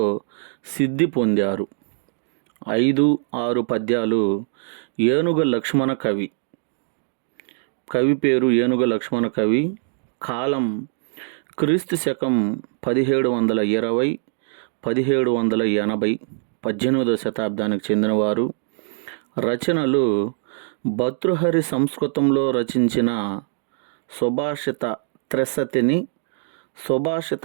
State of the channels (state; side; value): silent; left; digital silence